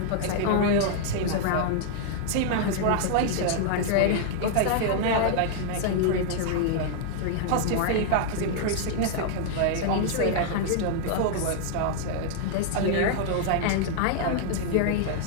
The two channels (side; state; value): both; different; correlation -0.01